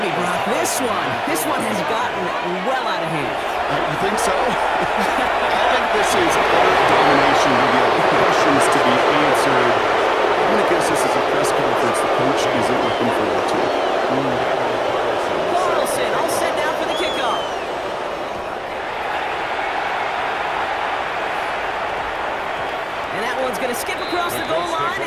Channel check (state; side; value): identical; both; correlation 1.00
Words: Brock, this one has gotten well out of hand. You think so? I think this is utter domination with the questions to be answered. I'm going to guess this is a press conference the coach isn't looking forward to. Carlson all set now for the kickoff. And that one's going to skip across the goal line